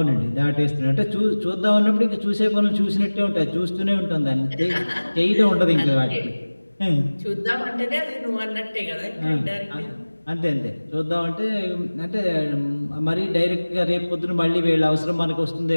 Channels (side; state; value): both; inverted; correlation -1.00